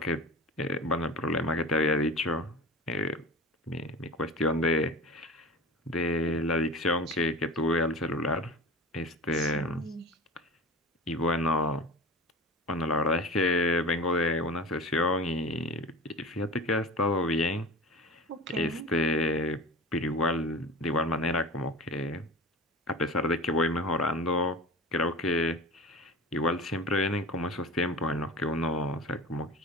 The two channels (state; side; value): normal; both; correlation 0.32